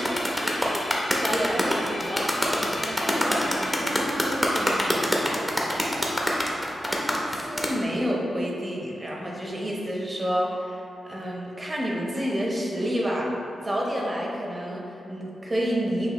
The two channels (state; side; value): normal; both; correlation 0.92